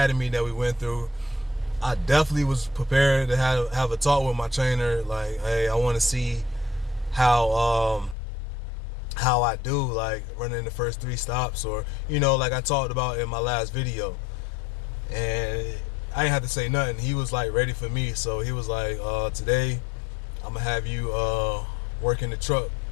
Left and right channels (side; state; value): right; drops out; at 8.2 s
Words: that we went through, I definitely was prepared to have a talk with my trainer. Like, hey, I want to see how I do, like, running the first 3 stops, or like I talked about in my last video. And I didn't have to say nothing. He was, like, ready for me. So he was like, today I'm gonna have you work in the truck.